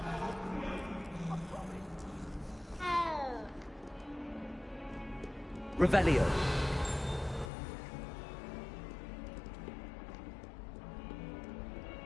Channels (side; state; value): right; drops out; at 7.5 s